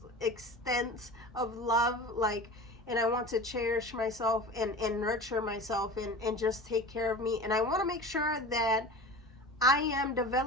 extent of love. Like, and I want to cherish myself and nurture myself and just take care of me. And I want to make sure that I am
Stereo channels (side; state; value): both; normal; correlation 0.34